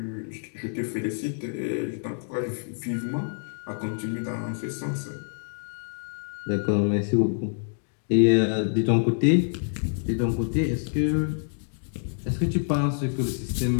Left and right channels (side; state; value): right; silent; digital silence